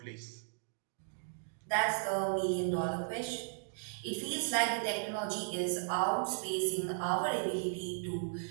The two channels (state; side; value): silent; left; digital silence